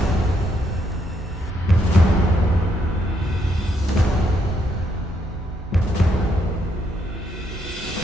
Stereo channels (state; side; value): normal; both; correlation 0.75